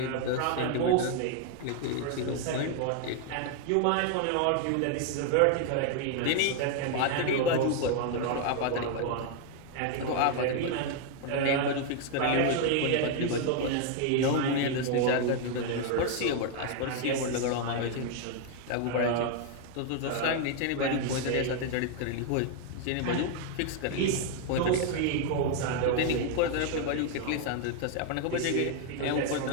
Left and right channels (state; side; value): different; both; correlation 0.00